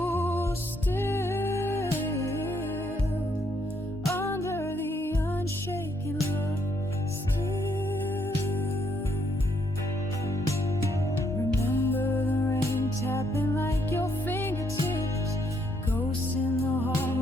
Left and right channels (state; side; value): normal; both; correlation 0.72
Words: still, under the unshaken love still. Remember the rain tapping like your fingertips, ghosts in the